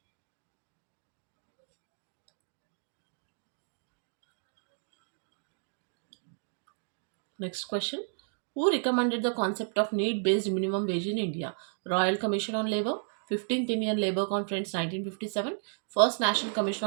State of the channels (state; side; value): silent; left; 56 dB below the other